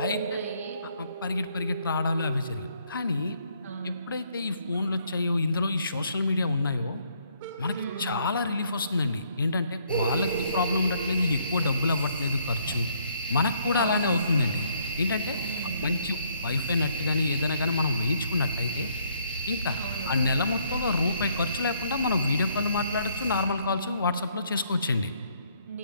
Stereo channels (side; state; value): both; inverted; correlation -0.68